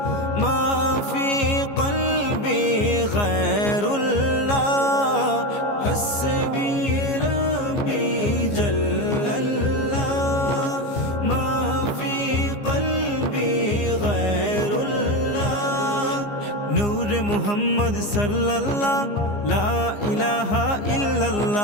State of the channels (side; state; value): right; late; 15 ms